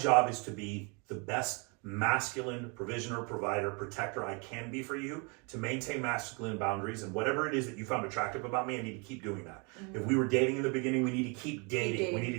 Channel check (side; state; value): left; quieter; 32.6 dB